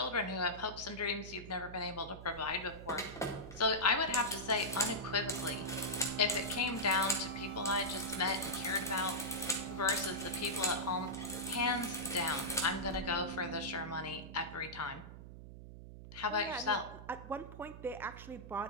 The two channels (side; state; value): right; noise; hum, 13 dB below the sound